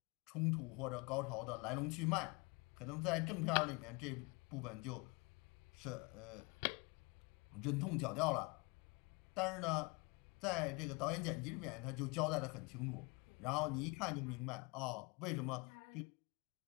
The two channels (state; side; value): quieter; right; 27.9 dB